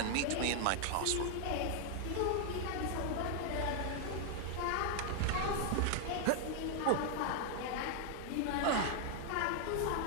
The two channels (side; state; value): both; different; correlation 0.00